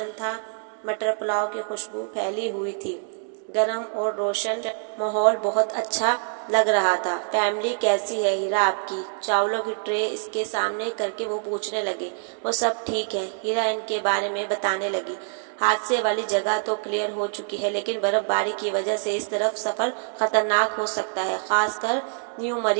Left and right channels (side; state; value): left; silent; digital silence